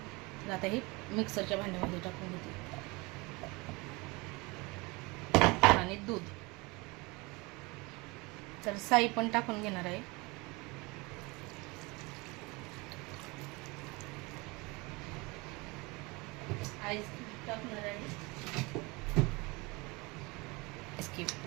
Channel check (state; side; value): quieter; left; 25.5 dB